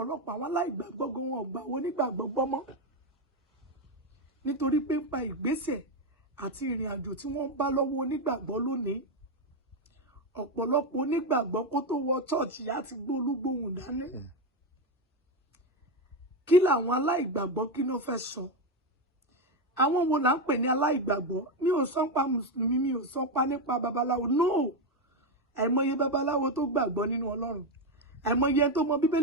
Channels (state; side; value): normal; both; correlation 0.09